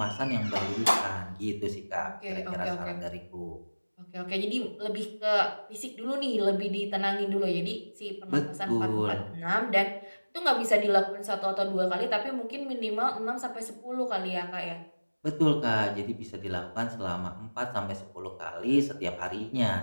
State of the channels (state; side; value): inverted; both; correlation -1.00